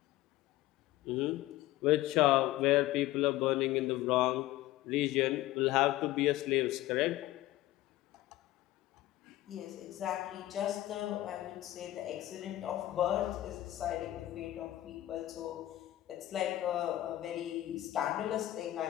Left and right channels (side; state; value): right; quieter; 15.6 dB